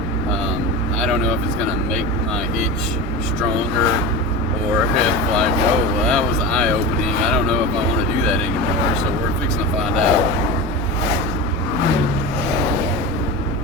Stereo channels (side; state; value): both; normal; correlation 0.27